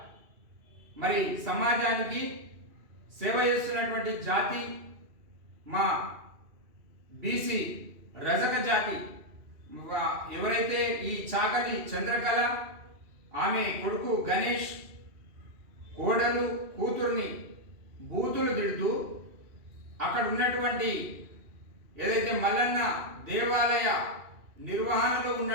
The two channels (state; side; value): late; left; 2.8 ms